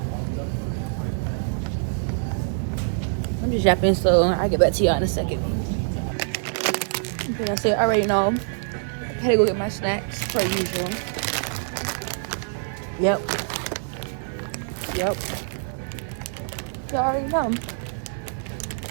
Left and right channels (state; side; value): silent; left; 55 dB below the other